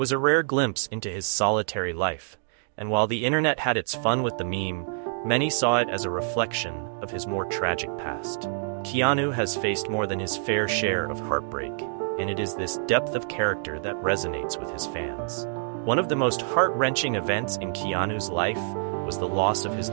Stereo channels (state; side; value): silent; left; digital silence